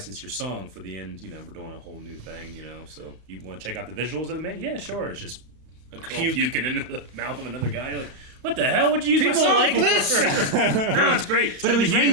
your song for the end. You know, we're doing a whole new thing. You know, so you want to check out the visuals of the man? Yeah, sure. It's just a girl puking into the mouth of another guy. You're like, what the hell would you use my People song like for? this? No, it's great. It's But it gonna was be huge.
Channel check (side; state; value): left; late; 35 ms